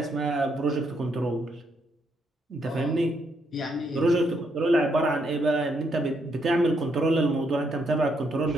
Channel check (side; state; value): both; normal; correlation 0.75